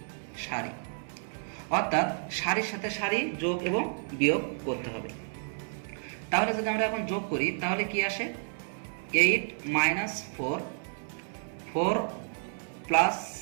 সারি, অর্থাৎ সারির সাথে সারি যোগ এবং বিয়োগ করতে হবে। তাহলে যদি আমরা এখন যোগ করি তাহলে কি আসে? 8 -4 4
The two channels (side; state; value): left; silent; 57 dB below the other